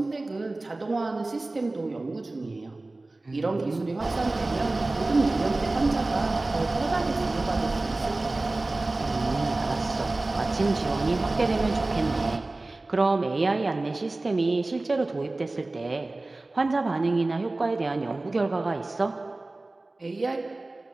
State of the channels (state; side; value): quieter; left; 3.0 dB